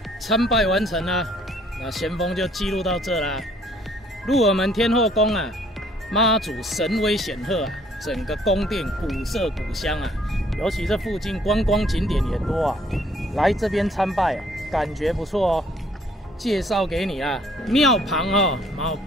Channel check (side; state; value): both; normal; correlation 0.62